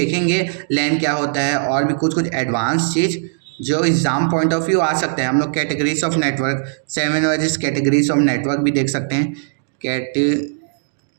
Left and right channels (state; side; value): silent; left; digital silence